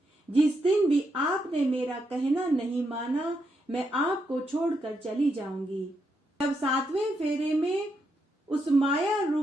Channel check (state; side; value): normal; both; correlation 0.81